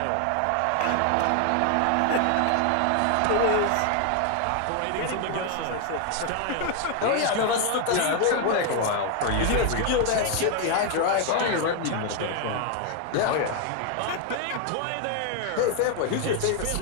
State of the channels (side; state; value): both; different; correlation 0.01